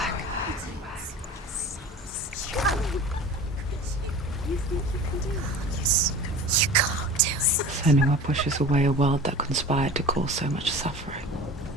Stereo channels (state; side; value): normal; both; correlation 0.37